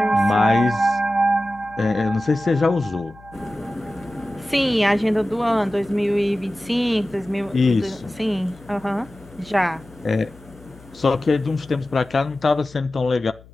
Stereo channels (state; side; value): noise; left; hum, 23 dB below the sound